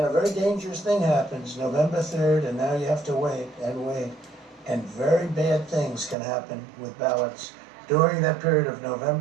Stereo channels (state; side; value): drops out; left; at 6.2 s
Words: a very dangerous thing happens November 3rd, and now you have to wait and wait, and very bad things can happen with ballots during that period of